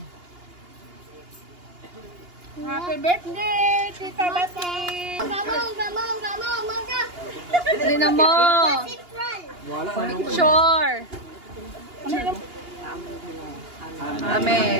Happy birthday, Tita Bati! Dali na mo!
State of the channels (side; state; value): left; late; 2.8 ms